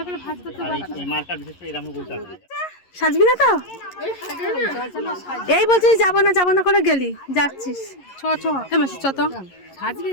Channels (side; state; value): right; late; 11 ms